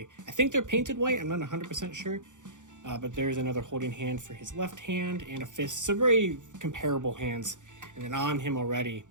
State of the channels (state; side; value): late; left; 0.86 ms